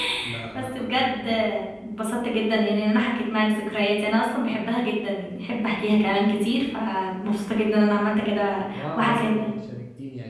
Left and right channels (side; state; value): both; identical; correlation 1.00